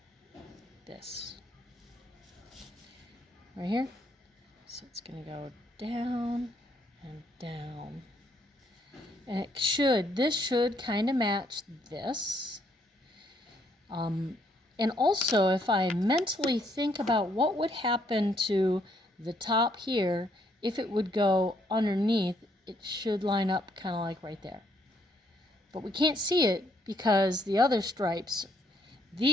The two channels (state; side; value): normal; both; correlation 0.71